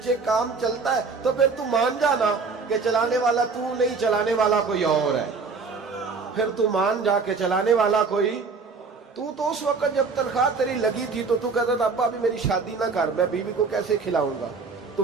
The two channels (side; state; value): left; quieter; 4.6 dB